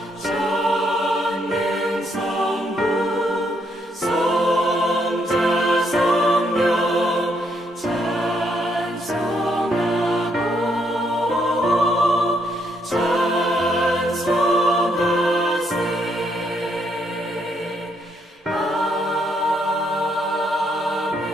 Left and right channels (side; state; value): both; normal; correlation 0.74